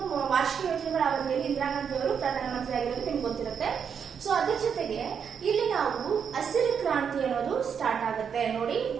ವಾರ್ಷಿಕ ಯೋಜನೆಗಳ ಅವಧಿಯಲ್ಲಿ ಇಂದಿರಾ ಗಾಂಧಿ ಅವರು ಪ್ರಧಾನಮಂತ್ರಿ ಆಗಿರೋದು ನಿಮ್ಗೆ ಗೊತ್ತಿರುತ್ತೆ. ಸೊ ಅದ್ರ ಜೊತೆಗೆ ಇಲ್ಲಿ ನಾವು ಹಸಿರು ಕ್ರಾಂತಿ ಅನ್ನೋದು ಸ್ಟಾರ್ಟ್ ಆಗುತ್ತೆ. ನೋಡಿ,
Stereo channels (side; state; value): left; quieter; 7.2 dB